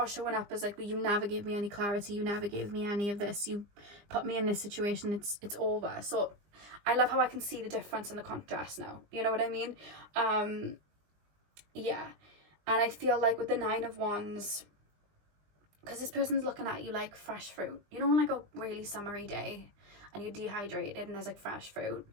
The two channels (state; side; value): late; left; 20 ms